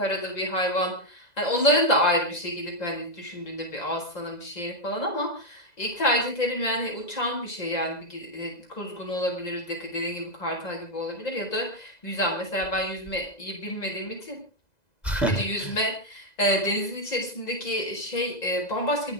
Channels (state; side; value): late; right; 2.0 ms